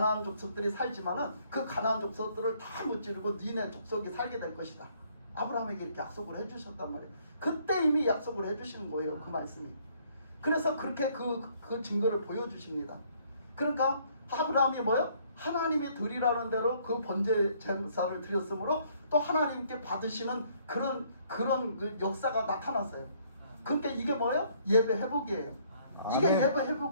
족속들이 살지만은 그 가나안 족속들을 다 무찌르고 니네 족속이 살게 될 것이다. 아브라함에게 이렇게 약속을 해주셨단 말이에요. 그때 이미 약속을 해주시는 거예요. 그 말씀이. 그래서 그렇게 그 증거를 보여주십니다. 그러니까 아브라함이 뭐요? 하나님이 드리라는 대로 그 번제 제사를 드렸으므로 또 하나님께 받으시는 그런 그 역사가 나타났어요. 그러니까 이게 뭐예요? 예배 회복이에요. 이게 아멘. 예배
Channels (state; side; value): inverted; both; correlation -0.64